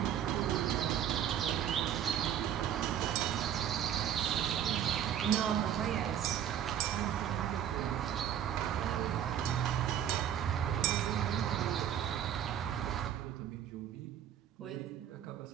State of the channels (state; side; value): quieter; left; 9.9 dB